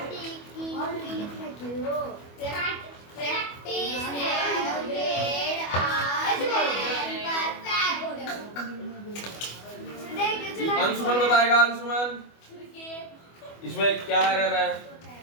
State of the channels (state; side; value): late; right; 25 ms